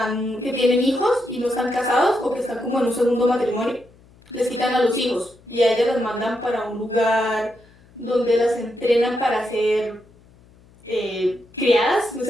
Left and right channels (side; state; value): left; noise; hum, 28 dB below the sound